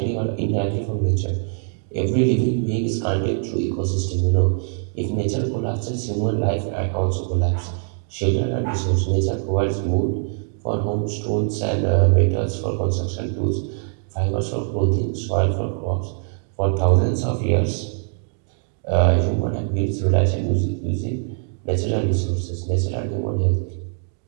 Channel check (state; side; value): silent; left; 58 dB below the other